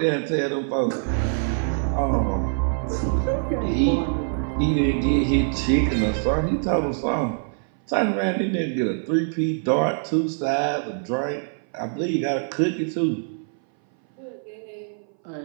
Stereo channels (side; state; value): left; silent; 59 dB below the other